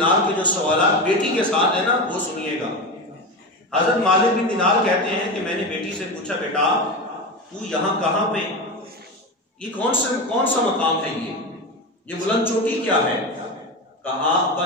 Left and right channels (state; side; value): normal; both; correlation 0.21